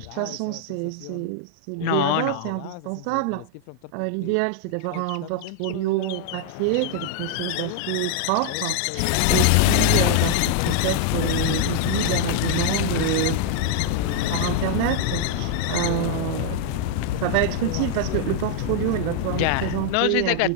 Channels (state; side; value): different; both; correlation 0.00